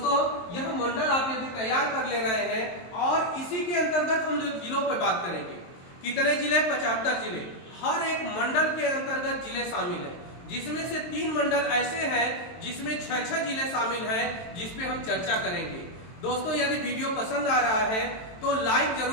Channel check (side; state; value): right; late; 23 ms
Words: यह मंडल आप यदि तैयार कर ले रहे हैं, और इसी के अंतर्गत हम लोग जिलों पर बात करेंगे। कितने जिले? 75 जिले। हर एक मंडल के अंतर्गत जिले शामिल हैं, जिसमें से 3 मंडल ऐसे हैं जिसमें 6-6 जिले शामिल हैं, जिसपे हम चर्चा करेंगे। दोस्तों यदि वीडियो पसंद आ रहा है तो लाइक